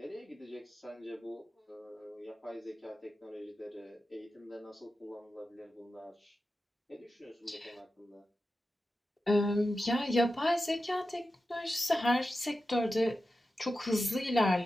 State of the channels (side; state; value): both; normal; correlation 0.92